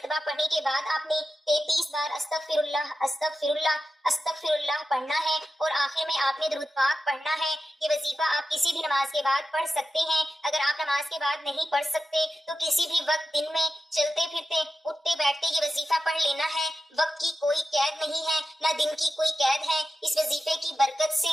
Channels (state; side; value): normal; both; correlation 0.92